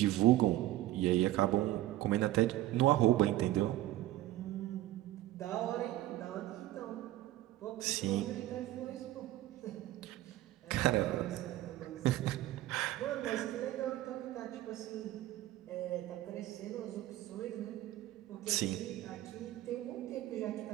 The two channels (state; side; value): quieter; left; 15.2 dB